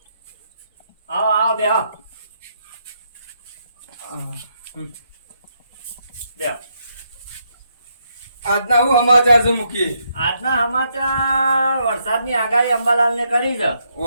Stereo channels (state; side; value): inverted; both; correlation -0.77